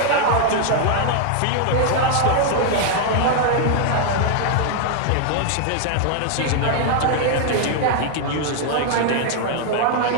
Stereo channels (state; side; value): different; both; correlation 0.00